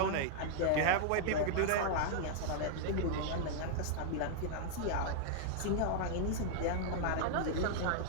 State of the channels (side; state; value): both; different; correlation -0.01